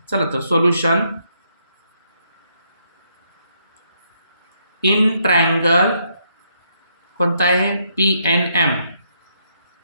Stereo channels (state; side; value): inverted; both; correlation -0.75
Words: चला तर सोल्युशन. इन ट्रायंगल कोणता आहे, PNM.